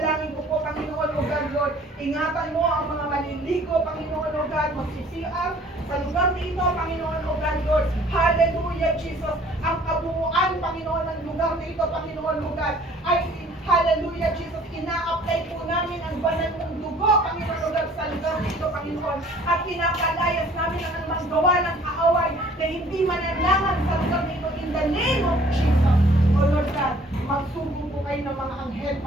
ko po, Panginoon, O God, Lord, ingatan mo ang mga maliligo, Panginoon, O God, mag-CR sa lugar na ito, Panginoon, O God, Lord. Hallelujah, Jesus. Ang kabuuan, Panginoon, ng lugar na ito, Panginoon, O God, ay hallelujah, Jesus. Ina-apply po namin ang banal mong dugo, Panginoon, O God, sa lugar na ito, Panginoon. At pinapalayas namin ang anumang gawa ng kaaway na hindi mananlangan sa lugar na ito in the name of Jesus. O Lord God, magsugo po kayo ng mga anghel,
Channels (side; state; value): both; normal; correlation 0.54